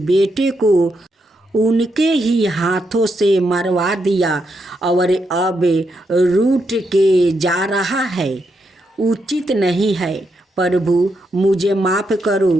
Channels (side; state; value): both; normal; correlation 0.81